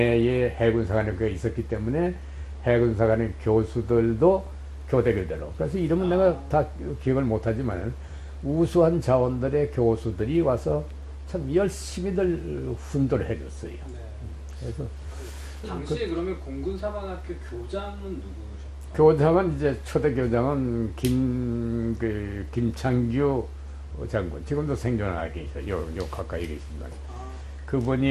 해군사관학교가 있었기 때문에 해군사관의 교수들도 교대교대로. 그래서 이름은 내가 다 기억을 못하지만 우수한 자원들의 교수들이 와서 참 열심히들 훈도를 해줬어요. 네. 그래서 당시에 그러면 공군사관학교 교장은 누구셨어요? 교장은 이제 초대 교장은 김창규 장군, 지금도 생존하고 계셔. 요 가까이 계십니다.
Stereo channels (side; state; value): both; identical; correlation 1.00